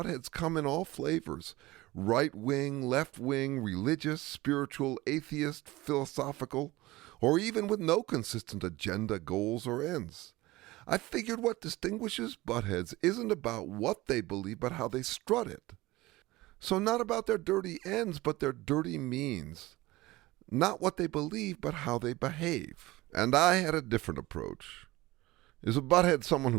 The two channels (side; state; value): left; quieter; 19.4 dB